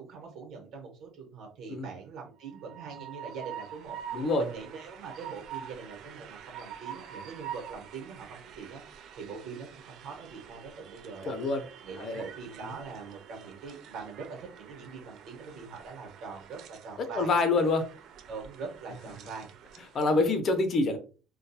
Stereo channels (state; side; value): normal; both; correlation 0.49